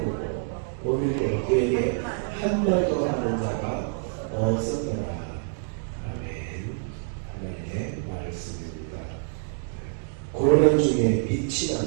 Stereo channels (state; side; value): silent; left; digital silence